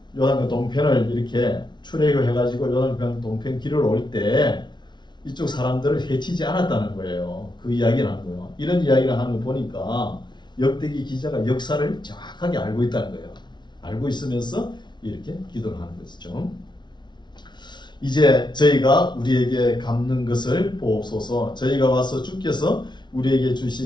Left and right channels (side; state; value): right; late; 0.21 ms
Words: 동편을 이렇게 출애굽해 가지고 요단강 동편 길을 올 때 이쪽 사람들을 해치지 않았다는 거예요. 그 이야기를 하는 거예요. 이런 이야기를 하는 거 보니까 역대기 기자가 역사를 정확하게 알고 있다는 거예요. 알고 있으면서 이렇게 기도를 하는 것이죠. 이제 저희가 우리에게 갚는 것을 보옵소서. 저희가 와서 주께서 우리에게